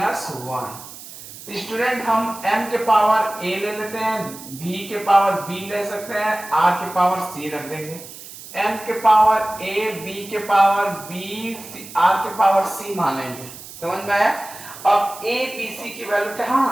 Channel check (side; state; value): right; noise; hiss, 15 dB below the sound